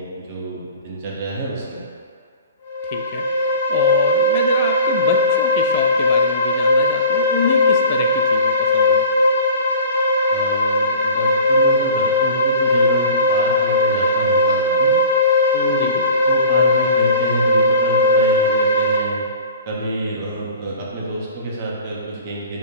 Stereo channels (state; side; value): inverted; both; correlation -0.43